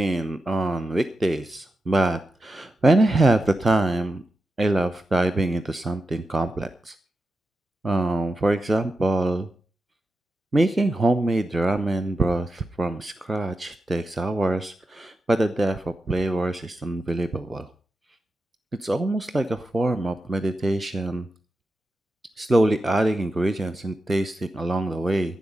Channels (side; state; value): both; normal; correlation 0.89